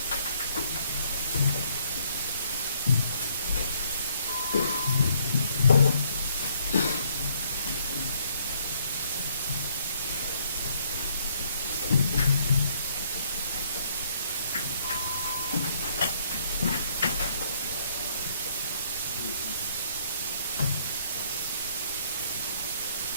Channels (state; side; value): inverted; both; correlation -0.66